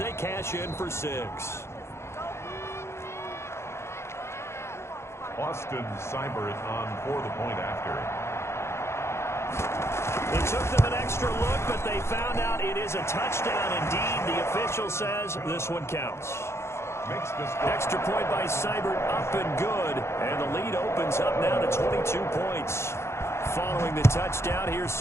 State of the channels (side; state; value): right; late; 0.13 ms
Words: cash in for 6. Austin Seibert on for the point after. It took them an extra look, but they found out it is a touchdown indeed. The official says this one counts. Extra point by Seibert, up and good. And the lead opens up now to 22 points. Following the touchdown, here's